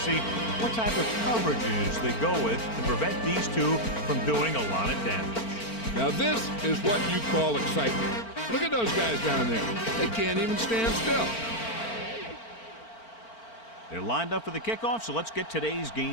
see what type of coverages they go with to prevent these two from doing a lot of damage. Now this is what you call excitement. Look at those guys down there. They can't even stand still. They're lined up for the kickoff, so let's get today's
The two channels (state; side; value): late; right; 4.4 ms